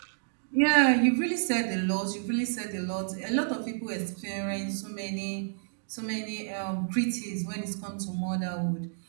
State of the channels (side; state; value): left; silent; digital silence